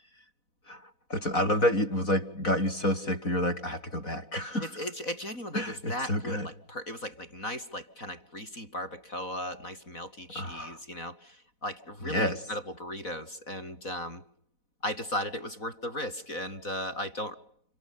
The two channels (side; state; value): right; late; 4.1 ms